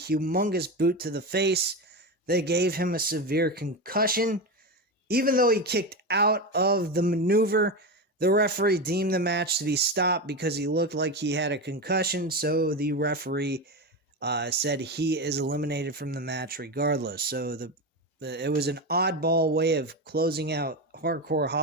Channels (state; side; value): normal; both; correlation 0.18